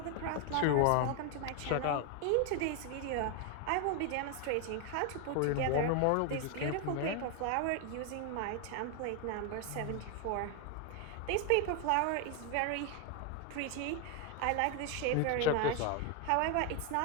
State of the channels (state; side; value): different; both; correlation 0.01